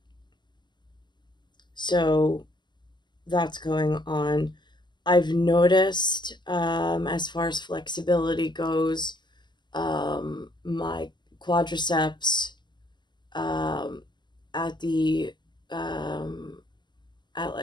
So that's going on. I've noticed, as far as flexibility goes, my quadriceps at the at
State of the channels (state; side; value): late; right; 0.21 ms